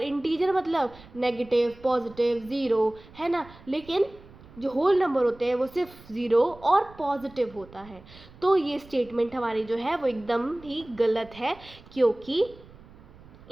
इंटीजर मतलब नेगेटिव, पॉजिटिव, ज़ीरो, है ना। लेकिन जो होल नंबर होते हैं वो सिर्फ ज़ीरो और पॉजिटिव होता है। तो ये स्टेटमेंट हमारी जो है वो एकदम ही गलत है, क्योंकि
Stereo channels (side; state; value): right; noise; rumble, 22 dB below the sound